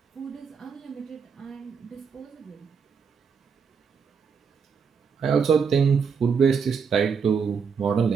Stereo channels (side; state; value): left; quieter; 6.1 dB